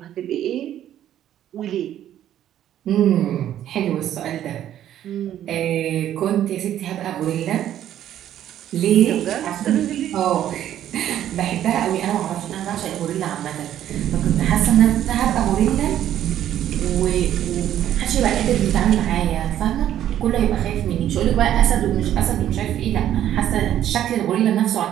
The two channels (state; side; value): quieter; left; 11.4 dB